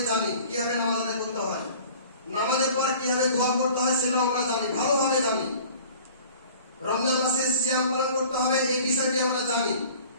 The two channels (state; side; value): inverted; both; correlation -0.47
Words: জানি, কিভাবে নামাজ আদায় করতে হয়, নামাজের পর কিভাবে দোয়া করতে হয় সেটাও আমরা জানি, ভালোভাবে জানি। রমজান মাসে সিয়াম পালন করতে হবে, এই বিষয়টি আমরা জানি।